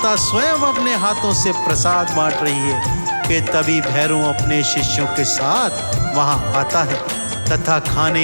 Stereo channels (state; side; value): inverted; both; correlation -1.00